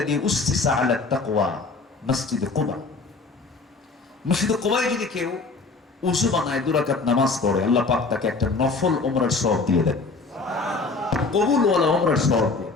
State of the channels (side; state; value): right; quieter; 3.9 dB